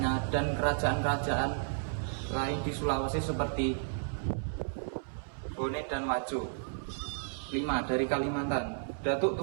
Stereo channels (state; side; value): silent; left; 56 dB below the other